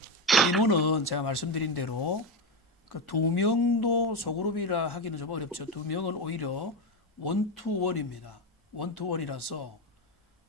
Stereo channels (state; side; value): normal; both; correlation 0.12